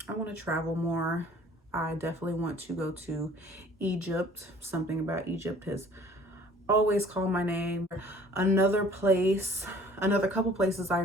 I want to travel more. I definitely want to go to Egypt. Something about Egypt has always called my name. Another couple places I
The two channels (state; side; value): normal; both; correlation 0.52